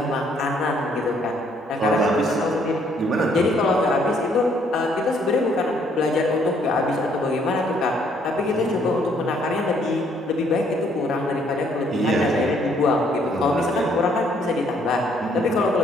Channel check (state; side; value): normal; both; correlation 0.66